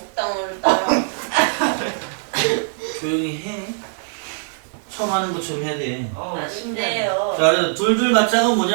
조용히 해. 처음 하는 것처럼 해야 돼. 아닌데요. 자, 그래서 둘둘 맞짱은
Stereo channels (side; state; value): left; silent; 65 dB below the other